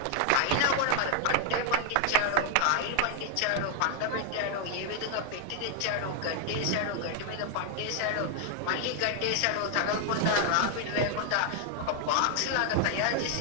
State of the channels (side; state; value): both; different; correlation 0.00